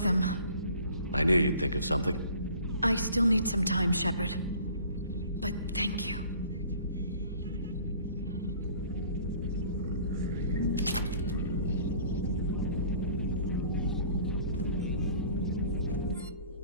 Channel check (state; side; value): inverted; both; correlation -0.50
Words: I knew you'd think of something. I still need some time, Shepard. But thank you.